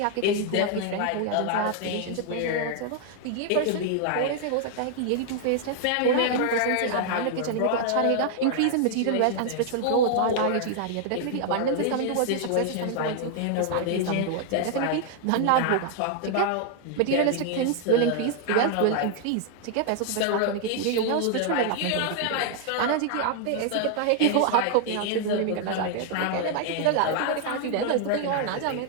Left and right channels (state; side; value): different; both; correlation 0.00